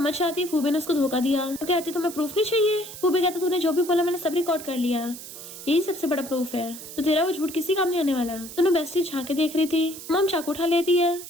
जाती है फूबे ने उसको धोखा दिया। वो कहती तुम्हें प्रूफ नहीं चाहिए? फूबे कहता तूने जो भी बोला मैंने सब रिकॉर्ड कर लिया, यही सबसे बड़ा प्रूफ है, तो तेरा वो झूठ किसी काम नहीं आने वाला। दोनों बेस्टी झांके देख रही थी। मॉम चाकू उठा लेती है।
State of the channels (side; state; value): right; noise; hiss, 13 dB below the sound